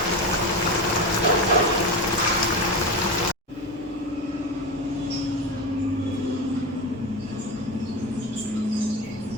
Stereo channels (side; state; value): both; normal; correlation 0.21